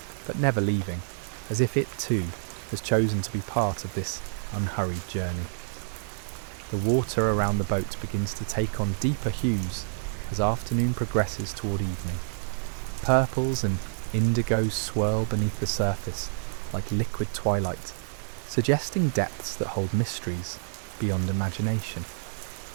but never leaving, as if it too has chosen to be part of this unhurried journey. The water around the boat begins to take on deeper hues as afternoon progresses toward evening. Purples and indigos swirl beneath the surface like liquid twilight, suggesting depths that hold mysteries beyond imagination.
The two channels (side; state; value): left; silent; digital silence